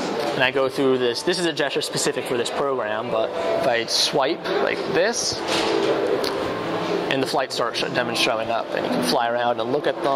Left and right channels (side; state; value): both; identical; correlation 1.00